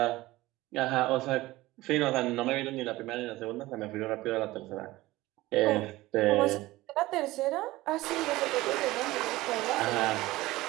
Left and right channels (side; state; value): left; quieter; 18.4 dB